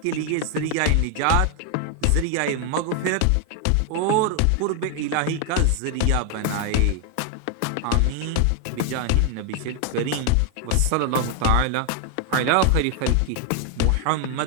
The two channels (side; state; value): both; different; correlation 0.00